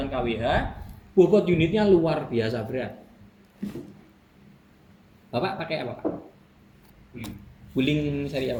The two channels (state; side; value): identical; both; correlation 1.00